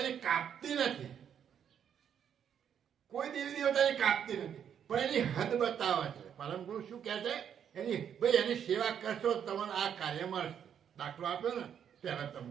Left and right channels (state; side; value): quieter; left; 8.6 dB